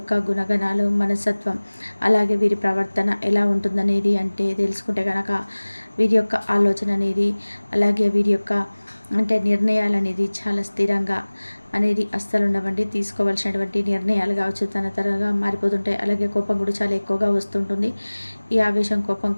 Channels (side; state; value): both; inverted; correlation -1.00